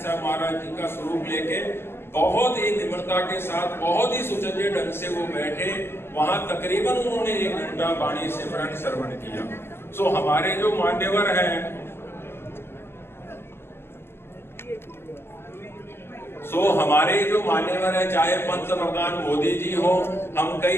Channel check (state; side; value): late; right; 0.11 ms